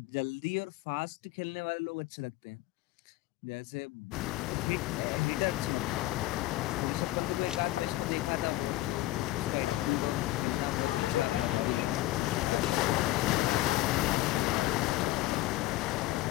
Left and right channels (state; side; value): quieter; right; 17.1 dB